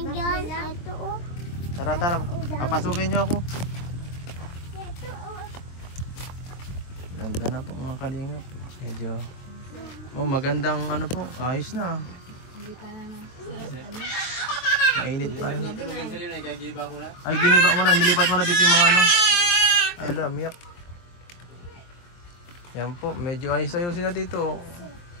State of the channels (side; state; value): right; late; 23 ms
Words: Ito Tara. Papasukin niyo ako. Ganda na po mga kalingap. Medyo magandang po. Ayos na. Hindi pa naman. Mainit pa. Ay, giniba ko na. Ay, giniba mo na. Nilipat mo na dito yung mga Ay, miyak. Yan po. Medyo ayos-ayusin na dito.